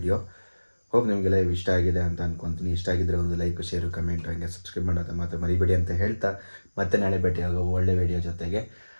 ಹೋಪ್ ನಿಮಗೆಲ್ಲ ಇಷ್ಟ ಆಗಿದೆ ಅಂತ ಅಂದ್ಕೊತೀನಿ. ಇಷ್ಟ ಆಗಿದ್ದರೆ ಒಂದು ಲೈಕ್, ಶೇರು, ಕಮೆಂಟ್, ಹಾಗೆ ಸಬ್ಸ್ಕ್ರೈಬ್ ಮಾಡೋದು ಮಾತ್ರ ಮರಿಬೇಡಿ ಅಂತ ಹೇಳ್ತಾ ಮತ್ತೆ ನಾಳೆ ಭೇಟಿಯಾಗೋ ಒಳ್ಳೆ ವಿಡಿಯೋ ಜೊತೆಗೆ.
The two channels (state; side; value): inverted; both; correlation -1.00